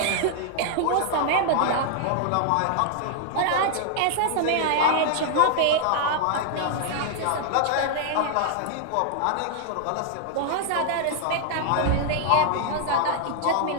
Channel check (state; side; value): different; both; correlation -0.01